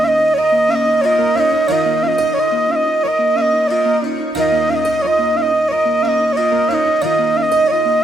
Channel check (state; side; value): normal; both; correlation 0.80